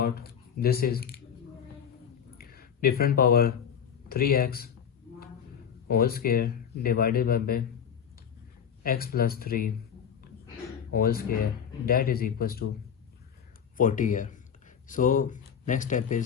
this is different power 3x whole square divided by x plus 3 whole square, that is equals to 40 here. So next step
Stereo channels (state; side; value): quieter; right; 8.1 dB